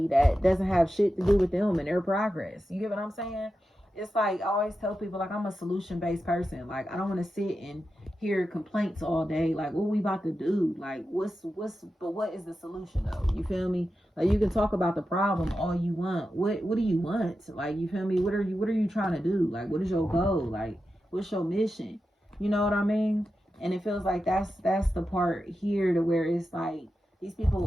that doesn't have shit to do with them and their progress. You get what I'm saying? It's like, I always tell people, like, I'm a solution-based person. Like, I don't want to sit and hear complaints all day. Like, what we about to do? Like, but what is the solution though? You feel me? Like, you can talk about the problem all you want. What do you want? Like, you feel me? What are you trying to do? Like, what is your goal? Like, what's your mission? You know what I mean? And it feels like that's the part here to where it's like, these people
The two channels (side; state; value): both; normal; correlation 0.90